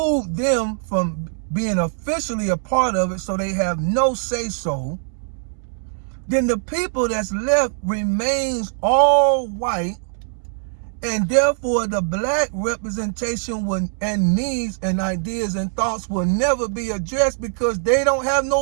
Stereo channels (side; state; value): left; silent; 64 dB below the other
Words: them from being officially a part of it, so they have no say-so, then the people that's left remains all white, and therefore the black representation and needs and ideas and thoughts will never be addressed, because they don't have